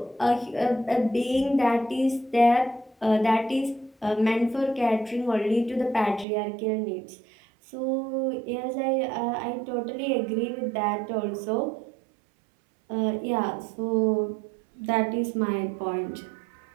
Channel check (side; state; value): left; drops out; at 6.2 s